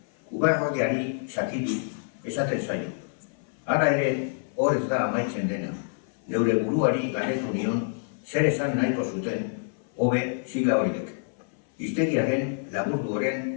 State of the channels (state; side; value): silent; right; 57 dB below the other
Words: ubarroiari sakitu esaten zaio. Hala ere, hor ez da amaitzen dena. Neure buruari galdetu nion zer esan nahiko zuten hobe sigla horiek. Hiztegiaren